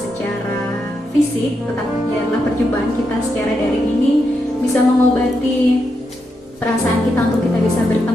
fisik, tetapi biarlah perjumpaan kita secara daring ini bisa mengobati perasaan kita untuk kita bisa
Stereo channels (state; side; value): normal; both; correlation 0.83